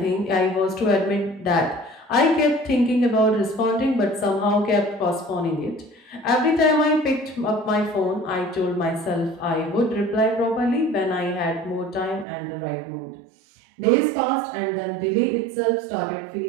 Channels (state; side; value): drops out; left; at 12.2 s